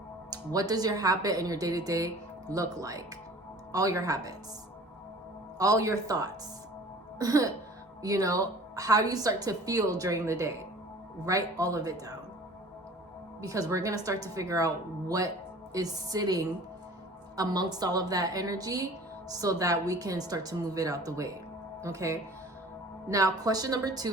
What does your habit and your day-to-day look like? All your habits, all your thoughts. You know, how do you start to feel during the day? Write all of it down, because we're going to start to figure out what is sitting amongst all of that energy so that we can start to move it out the way. Okay. Now, question number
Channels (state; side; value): normal; both; correlation 0.46